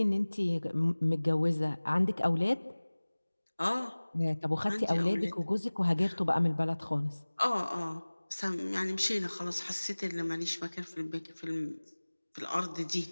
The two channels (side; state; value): both; inverted; correlation -1.00